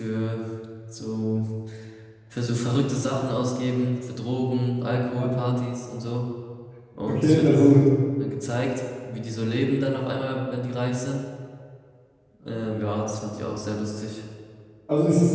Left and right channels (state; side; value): identical; both; correlation 1.00